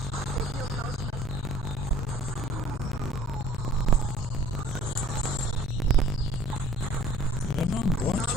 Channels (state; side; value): normal; both; correlation 0.52